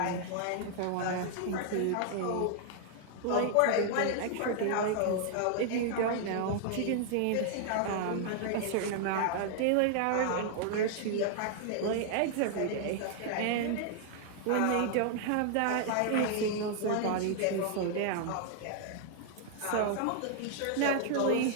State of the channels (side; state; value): both; different; correlation 0.00